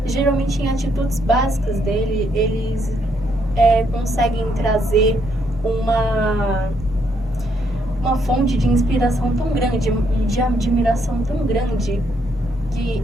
geralmente em atitudes básicas dele, eles conseguem trazer uma fonte de inspiração tão grande, de admiração tão grande, que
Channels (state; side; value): normal; both; correlation 0.73